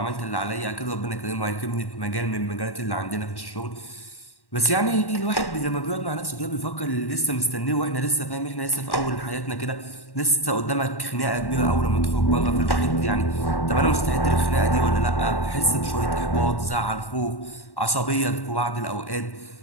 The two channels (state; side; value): late; right; 1.1 ms